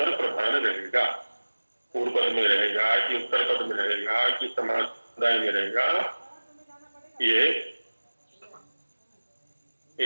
प्रधान रहेगा, पूर्व पद में रहेगा कि उत्तर पद में रहेगा कि समास में रहेगा, ये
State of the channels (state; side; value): inverted; both; correlation -1.00